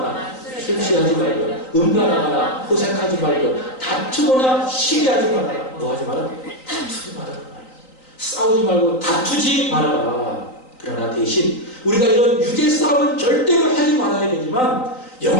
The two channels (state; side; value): late; right; 3.9 ms